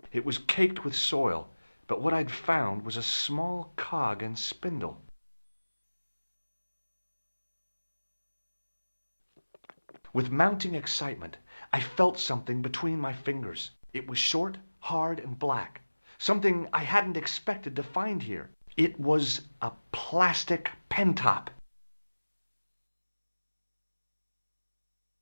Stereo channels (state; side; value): inverted; both; correlation -1.00